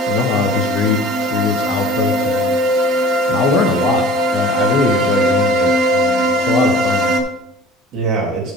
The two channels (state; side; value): normal; both; correlation 0.45